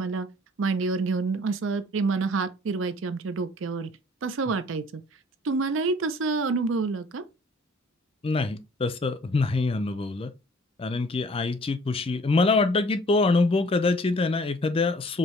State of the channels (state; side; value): normal; both; correlation 0.53